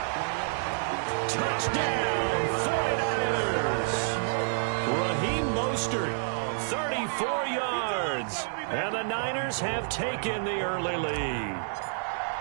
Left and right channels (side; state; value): left; silent; digital silence